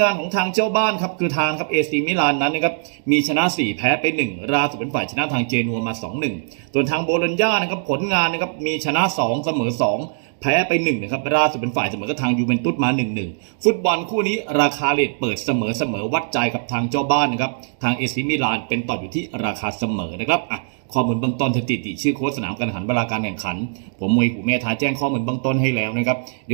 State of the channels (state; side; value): silent; left; digital silence